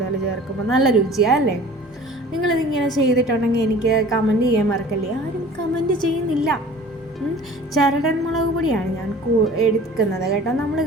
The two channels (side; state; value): both; normal; correlation 0.45